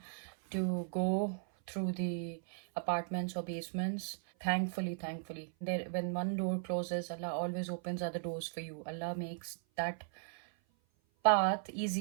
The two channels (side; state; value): left; silent; 53 dB below the other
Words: to go through the apartments or basements. Thankfully, there, when one door closes, Allah always opens other doors for you. Allah makes that path